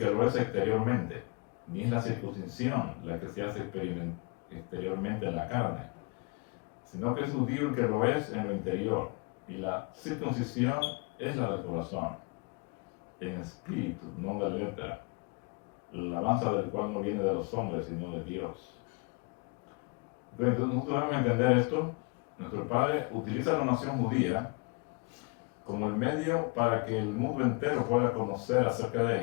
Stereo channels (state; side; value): quieter; right; 29.6 dB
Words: lo es exteriormente, ni es la circuncisión la que se hace exteriormente en la carne, sino que es judío el que lo es en lo interior, y la circuncisión es la del corazón, en espíritu, no de letra, la alabanza del cual no viene de los hombres, sino de Dios. Entonces nosotros debemos entender esto. Nuestro Padre utiliza la nación judía como el medio para que el mundo entero pueda conocer acerca